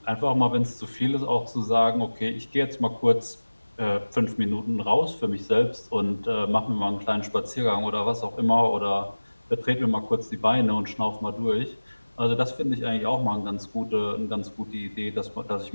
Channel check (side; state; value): both; inverted; correlation -1.00